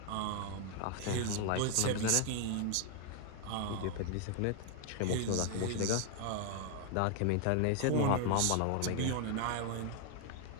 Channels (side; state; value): both; different; correlation 0.00